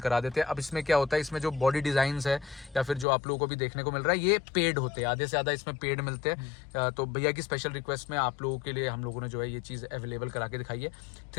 देते हैं। अब इसमें क्या होता है, इसमें जो बॉडी डिज़ाइंस है या फिर जो आप लोगों को भी देखने को मिल रहा है, ये पेड होते हैं, आधे से ज़्यादा इसमें पेड मिलते हैं। तो भैया की स्पेशल रिक्वेस्ट में आप लोगों के लिए हम लोगों ने जो है ये चीज़ अवेलेबल करा के दिखाई है।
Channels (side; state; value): right; drops out; at 3.1 s